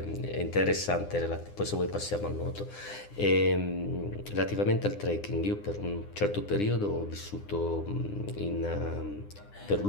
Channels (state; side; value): late; right; 9.8 ms